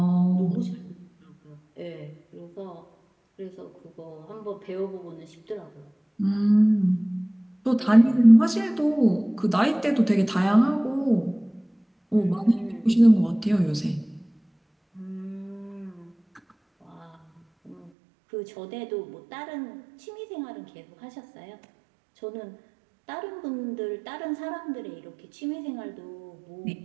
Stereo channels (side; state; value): left; drops out; at 17.9 s